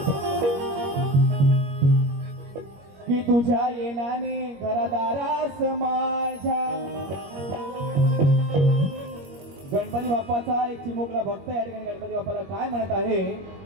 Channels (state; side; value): late; left; 21 ms